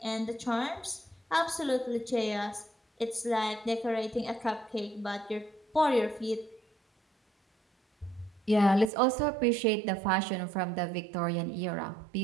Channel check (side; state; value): left; drops out; at 8.9 s